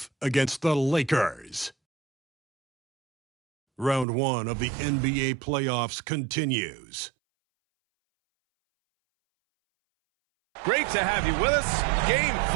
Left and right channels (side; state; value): left; drops out; at 4.0 s